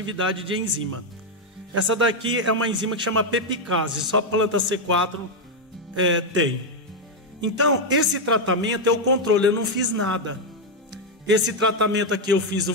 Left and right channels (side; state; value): both; normal; correlation 0.03